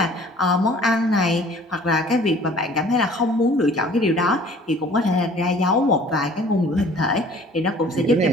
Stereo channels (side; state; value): both; normal; correlation 0.51